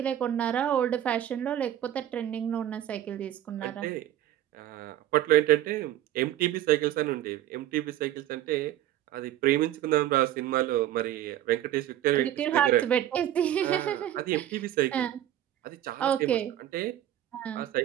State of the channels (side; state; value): left; quieter; 12.3 dB